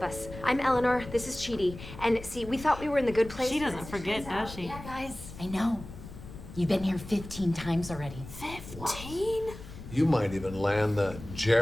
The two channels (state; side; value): noise; left; rumble, 14 dB below the sound